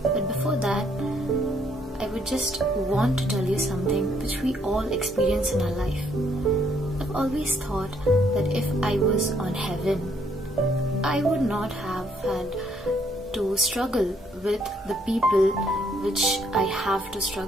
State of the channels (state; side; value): normal; both; correlation 0.69